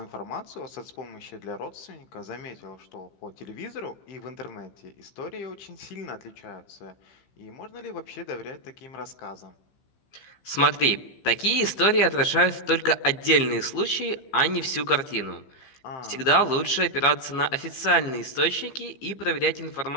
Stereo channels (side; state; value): right; late; 15 ms